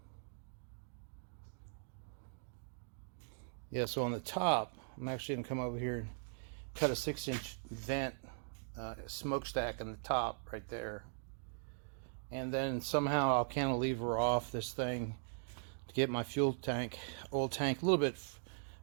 so on the top, I'm actually going to come over here and cut a 6-inch vent, smokestack in the top right there. And then somehow I'll cantilever off this thing to get my fuel tank, oil tank, a little bit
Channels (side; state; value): left; silent; digital silence